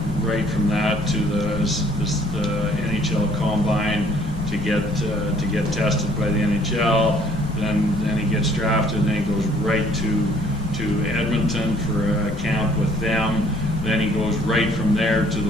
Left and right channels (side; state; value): left; noise; rumble, 9 dB below the sound